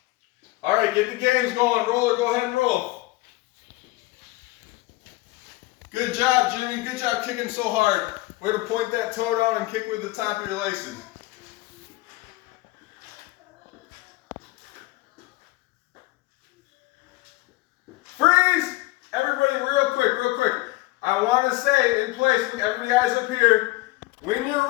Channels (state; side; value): quieter; right; 20.3 dB